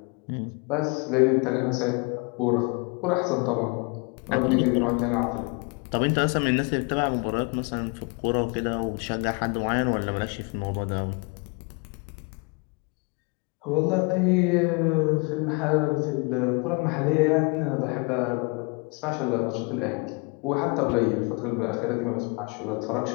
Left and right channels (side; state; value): right; quieter; 31.3 dB